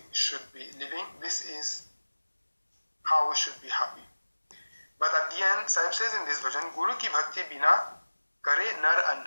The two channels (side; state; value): both; inverted; correlation -1.00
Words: should be living. This is how we should be happy. But at the end, Sahib says in this version, Guru ki bhakti bina kare nar